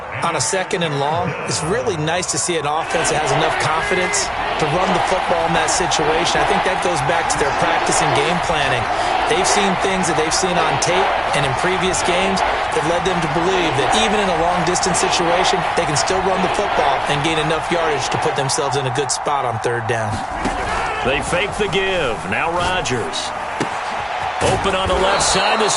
On a 2nd and long, it's really nice to see an offense that has enough confidence to run the football in that situation. I think that goes back to their practice and game planning. They've seen things that they've seen on tape and in previous games that led them to believe that even in a long-distance situation, they can still run the football and gain enough yardage to put themselves in a good spot on 3rd down. They fake the give. Now Rodgers. Open on the left side.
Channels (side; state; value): both; identical; correlation 1.00